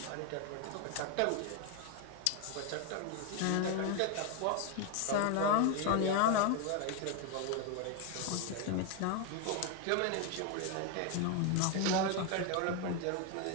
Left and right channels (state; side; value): different; both; correlation 0.01